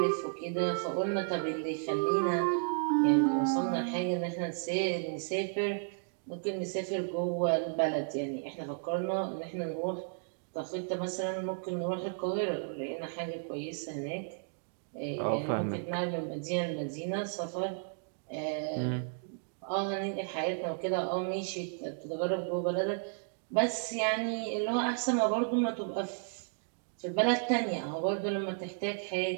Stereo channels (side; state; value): left; silent; digital silence